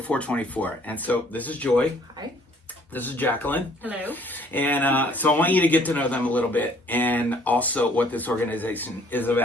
424. And so this is Joy. Hi. This is Jacqueline. Hello. And so I want you to get to know them a little bit and also what this organization is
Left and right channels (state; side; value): normal; both; correlation 0.59